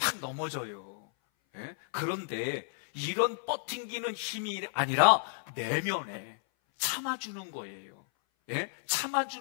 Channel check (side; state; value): right; silent; 56 dB below the other